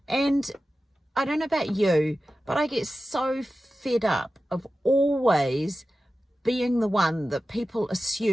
And I don't know about you, but I get so fed up of always being the one that people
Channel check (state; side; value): normal; both; correlation 0.94